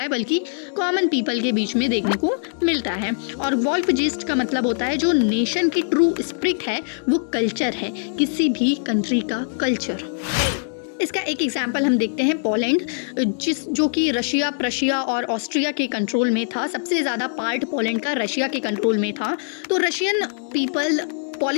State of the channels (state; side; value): silent; right; digital silence